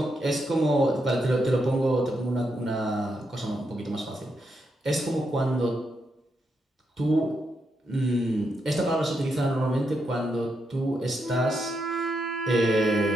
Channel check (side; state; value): both; normal; correlation 0.82